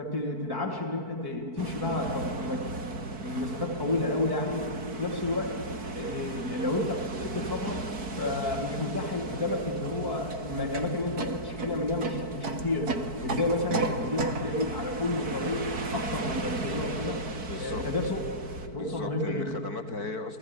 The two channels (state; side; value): late; left; 4.5 ms